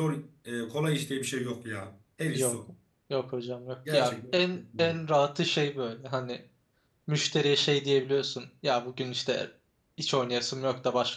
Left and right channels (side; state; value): both; identical; correlation 1.00